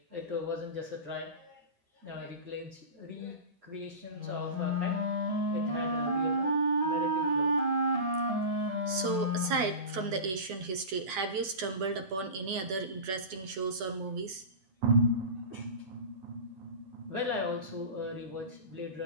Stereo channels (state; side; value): late; left; 11 ms